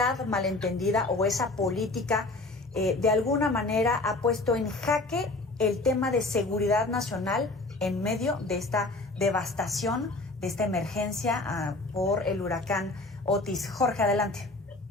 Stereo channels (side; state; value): right; quieter; 3.1 dB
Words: malentendida o esa política de alguna manera ha puesto en jaque el tema de seguridad nacional en medio de esta devastación, de esta emergencia por el huracán Otis. Jorge, adelante.